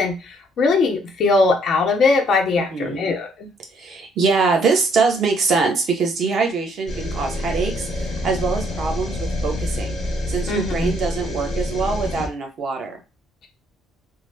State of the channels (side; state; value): both; normal; correlation 0.67